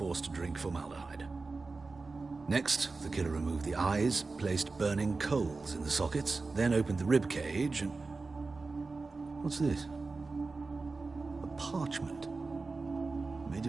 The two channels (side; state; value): left; quieter; 3.9 dB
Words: to drink formaldehyde. Next, the killer removed the eyes, placed burning coals in the sockets, then opened the rib cage and... What's this? A parchment. Made